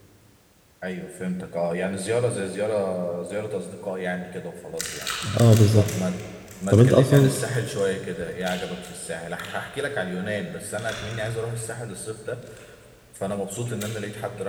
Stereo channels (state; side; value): identical; both; correlation 1.00